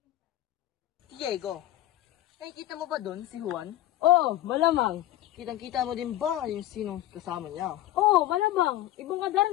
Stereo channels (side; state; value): right; quieter; 13.8 dB